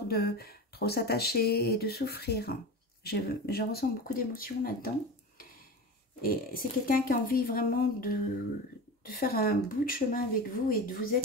de trop s'attacher et de souffrir. Je ressens beaucoup d'émotions là-dedans. Et c'est quelqu'un qui a envie vraiment de faire un bout de chemin avec vous et de vous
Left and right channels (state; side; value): normal; both; correlation 0.28